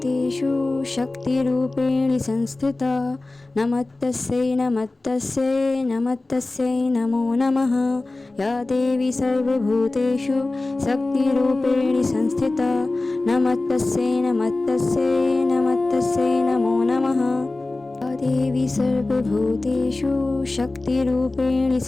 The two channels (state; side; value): quieter; right; 3.1 dB